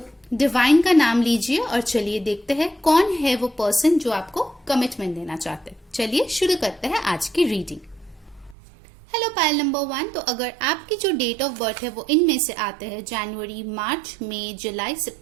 डिवाइन का नाम लीजिए और चलिए देखते हैं कौन है वो पर्सन जो आपको कमिटमेंट देना चाहते हैं। चलिए शुरू करते हैं आज की रीडिंग। Hello pile number 1। तो अगर आपकी जो डेट ऑफ बर्थ है वो इनमें से आते हैं जनवरी, मार्च, मई, जुलाई,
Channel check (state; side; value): drops out; left; at 8.6 s